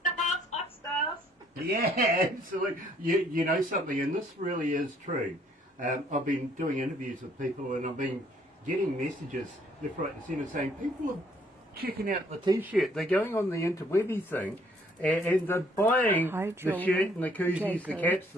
stuff. Yeah, absolutely. You know something, and this really is true. I've been doing interviews with people, and I've been getting messages left, right, and centre saying people are checking out the T-shirt. They're going on the interwebby thing. And they're buying the shirt and the koozies, the caps,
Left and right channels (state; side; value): normal; both; correlation 0.63